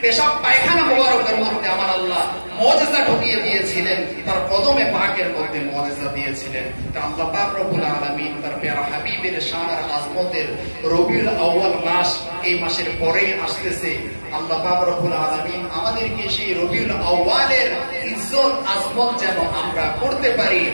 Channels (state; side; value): inverted; both; correlation -1.00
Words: পেশাব পায়খানা মোবারকের মধ্যে আমার আল্লাহ মুজিজা ঢুকিয়ে দিয়েছিলেন। তার কদমে পাকের মধ্যে মুজিজা দিয়েছিলেন। তা আল্লাহ পাক রব্বুল আলামিন তার প্যারা হাবিবের শান আর আজমতের রবিউল আউয়াল মাস, এই মাসের পরেই আসতেছে। আল্লাহ পাক রব্বুল আলামিন আমাদেরকে সেই রবিউল আউয়ালের ইজ্জত আজমত যেন আমরা করতে পারি,